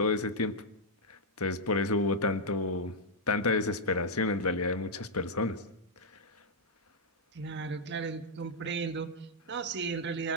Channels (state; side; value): normal; both; correlation -0.05